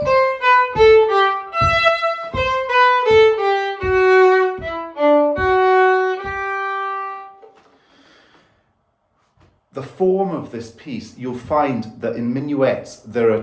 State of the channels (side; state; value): both; identical; correlation 1.00